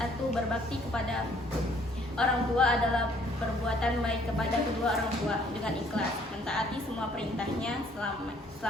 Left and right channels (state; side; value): normal; both; correlation 0.62